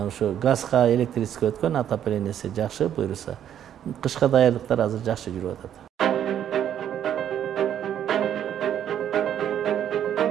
газга, электричестве өткөн, отоплениясы жакшы буйруса. Кышка даярдыктар азыр жакшы жүрүп атат.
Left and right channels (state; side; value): quieter; left; 10.0 dB